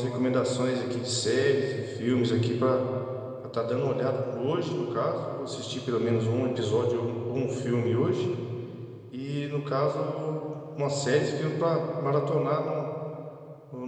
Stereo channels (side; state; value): both; identical; correlation 1.00